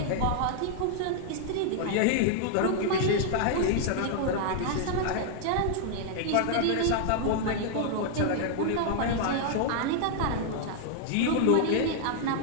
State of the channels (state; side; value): different; both; correlation 0.00